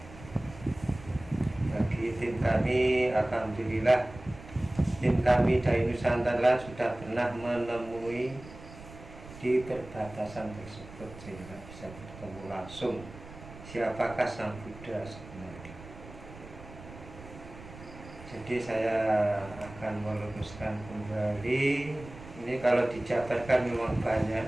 Bagi tim kami, alhamdulillah, tim kami dari Nusantara sudah pernah menemui di perbatasan tersebut sehingga bisa bertemu langsung siapakah Sang Buddha sebenarnya. Jadi saya akan meluruskan kembali. Ini kalau dijabarkan memang banyak,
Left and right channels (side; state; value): right; noise; rumble, 16 dB below the sound